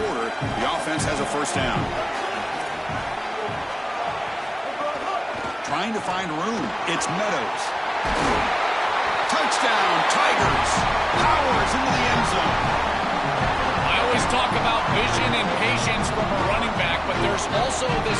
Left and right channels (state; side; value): identical; both; correlation 1.00